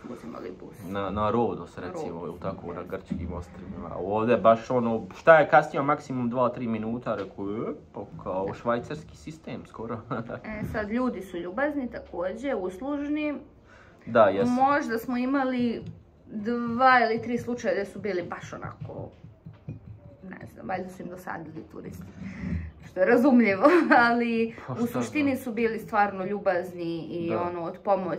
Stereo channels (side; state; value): both; identical; correlation 1.00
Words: uzimali bus. Na Rodos recimo, tako na grčkim ostrvima. Ovdje baš šta je kasnije, maksimum 2-3 minuta, rekao, kao švajcarski sistem skoro. Sad ljudi su ljubazni također, uslužni. Da, jesu. Možda smo imali 2 ili 3 slučaja gdje su bili baš onako, ne znam, valjda su im dosadili turisti. Što je razumljivo, ali u suštini su bili stvarno ljubazni i od